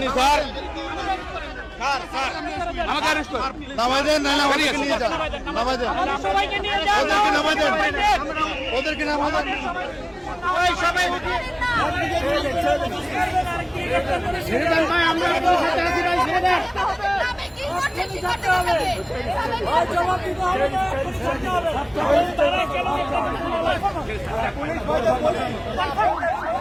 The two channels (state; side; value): identical; both; correlation 1.00